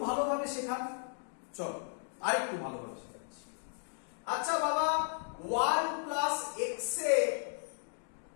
ভালোভাবে শেখান। চলো আরেকটু ভালোভাবে শেখাচ্ছি। আচ্ছা বাবা, 1 plus x a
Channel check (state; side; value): silent; right; 54 dB below the other